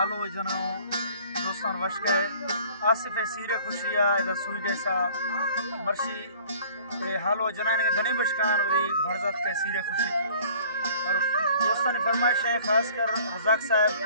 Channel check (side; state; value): both; inverted; correlation -0.52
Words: जनो दोस्तान वश के आसिफ सीरे खुशिया इधर सुई कैसा मर्शी हालो जनाने के धनी बशकान वही भरजात के सीरे खुशी और दोस्तान की फरमाइश है खासकर रज़ाक